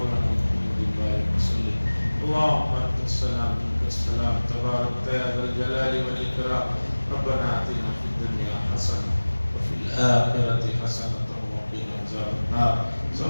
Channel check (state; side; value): inverted; both; correlation -1.00